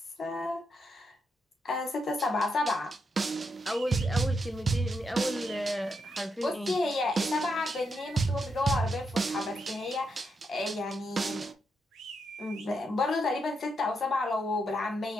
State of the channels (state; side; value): normal; both; correlation 0.81